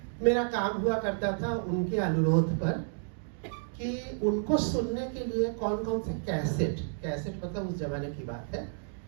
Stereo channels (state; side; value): silent; left; digital silence